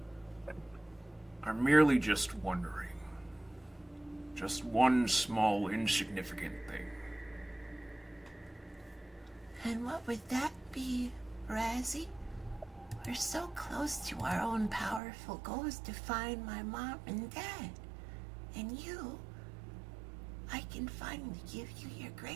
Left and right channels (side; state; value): left; drops out; at 15.0 s